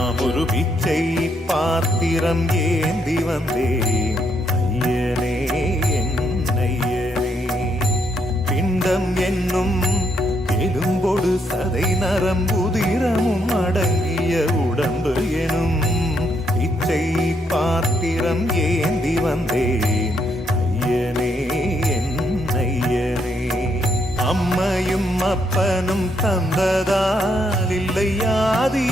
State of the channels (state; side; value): normal; both; correlation 0.75